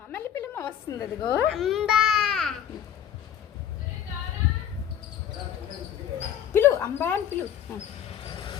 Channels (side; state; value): right; quieter; 9.6 dB